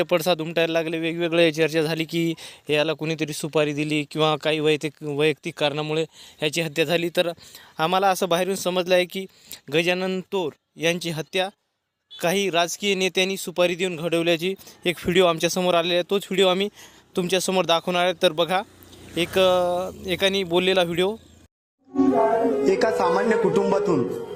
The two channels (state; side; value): identical; both; correlation 1.00